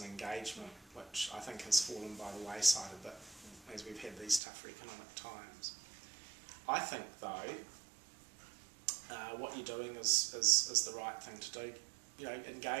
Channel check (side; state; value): left; drops out; at 4.4 s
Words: engagement, which I think has fallen by the wayside a bit as we've had these tougher economic times. I think, though, what you're doing is the right thing to do.